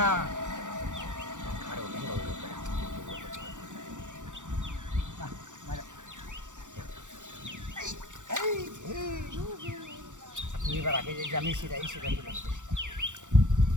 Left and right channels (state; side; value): late; left; 0.86 ms